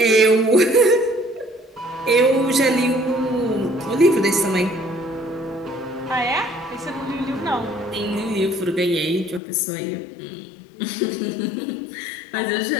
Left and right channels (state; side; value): drops out; right; at 9.4 s